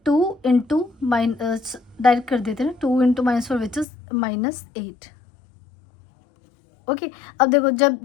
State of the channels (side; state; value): right; drops out; at 3.9 s